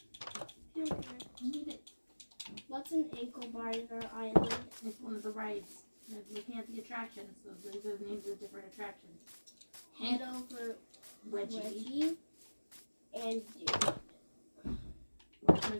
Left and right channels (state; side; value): inverted; both; correlation -1.00